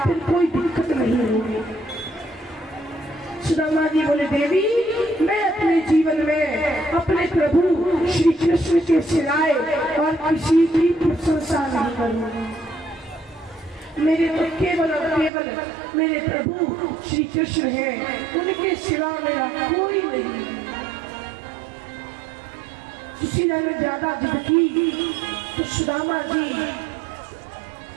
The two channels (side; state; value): left; drops out; at 15.3 s